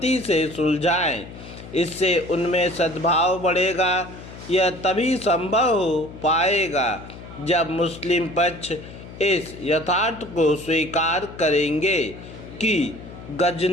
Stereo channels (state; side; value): noise; left; hum, 15 dB below the sound